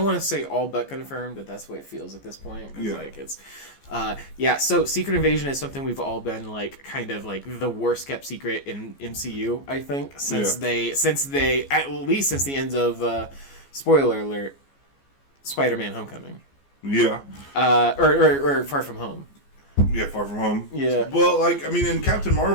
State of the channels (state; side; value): late; right; 14 ms